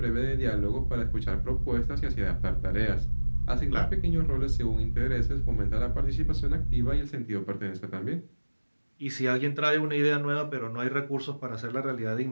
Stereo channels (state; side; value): inverted; both; correlation -1.00